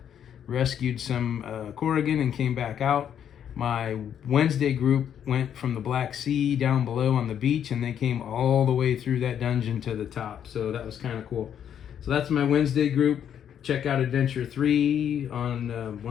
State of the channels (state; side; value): quieter; right; 9.1 dB